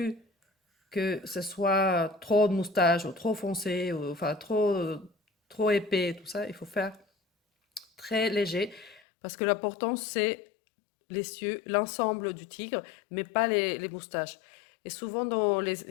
que ce soit trop de moustaches ou trop foncé, ou, enfin trop épais, tout ça. Il faut faire très léger, parce que l'important c'est les cieux, l'ensemble du tigre, mais pas les moustaches. Et souvent dans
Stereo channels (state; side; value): drops out; right; at 9.0 s